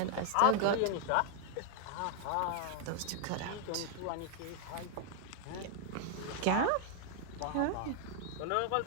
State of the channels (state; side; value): different; both; correlation 0.00